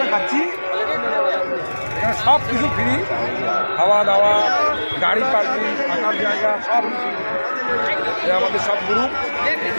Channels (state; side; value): inverted; both; correlation -1.00